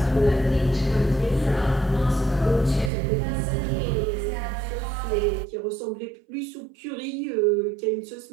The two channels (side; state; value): left; drops out; at 2.9 s